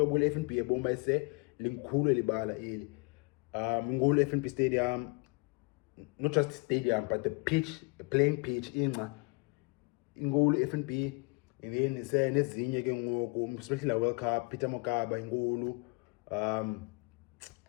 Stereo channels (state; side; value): quieter; right; 28.2 dB